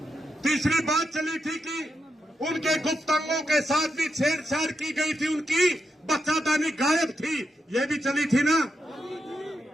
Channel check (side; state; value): both; normal; correlation 0.85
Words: तीसरी बात चली थी कि उनके गुप्त अंगों के साथ भी छेड़छाड़ की गई थी, उनकी बच्चादानी गायब थी, ये भी चली थी ना?